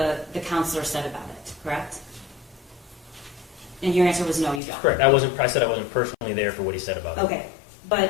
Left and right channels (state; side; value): drops out; right; at 4.6 s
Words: counselor said about it, correct? And your answer was no, you don't. Correct. I said I wasn't personally there for what he said about it. Okay,